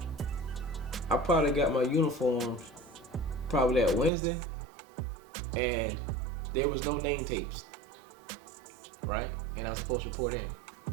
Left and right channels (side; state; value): left; drops out; at 4.1 s